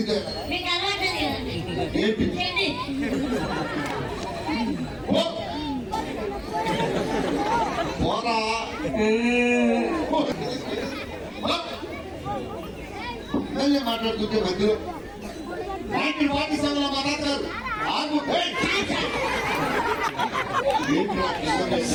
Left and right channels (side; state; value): both; identical; correlation 1.00